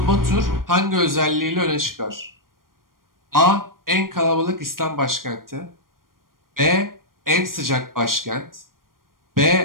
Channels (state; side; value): late; left; 0.91 ms